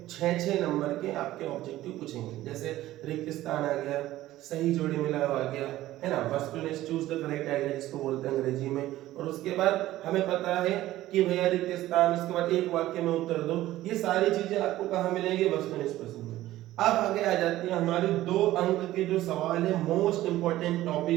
6 नंबर के आपके ऑब्जेक्टिव पूछेंगे। जैसे रिक्त स्थान आ गया, सही जोड़ी मिला हुआ आ गया, है ना, वस्तुनिष्ठ चूज द करेक्ट आइडिया जिसको बोलते हैं अंग्रेजी में। और उसके बाद हमें पता है कि भैया रिक्त स्थान, उसके बाद एक वाक्य में उत्तर दो। ये सारी चीजें आपको कहाँ मिलेंगी? वस्तुनिष्ठ प्रश्न में। अब आगे आ जाती है हमारी 2 अंक के जो सवाल है, मोस्ट इंपॉर्टेंट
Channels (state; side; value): quieter; left; 15.3 dB